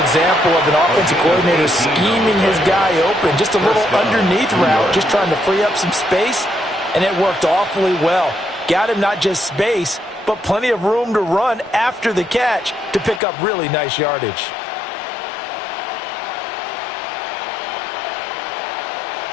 of an offensive coordinator scheming his guy open. Just a little underneath route, just trying to free up some space, and it worked awfully well. Got him not just space, but plenty of room to run after the catch to pick up really nice yardage.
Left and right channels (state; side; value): drops out; right; at 13.2 s